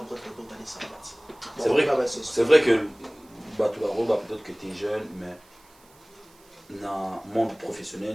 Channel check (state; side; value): noise; right; hiss, 28 dB below the sound